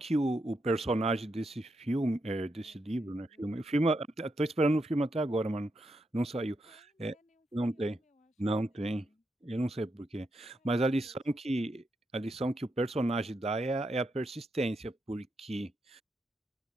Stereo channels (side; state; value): both; normal; correlation 0.83